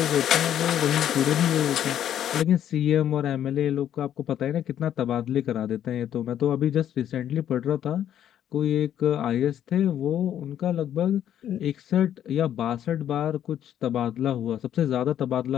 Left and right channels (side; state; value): right; quieter; 10.5 dB